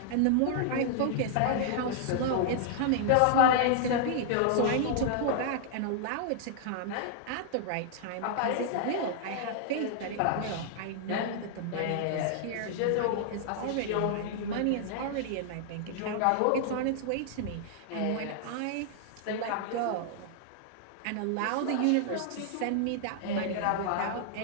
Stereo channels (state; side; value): different; both; correlation -0.01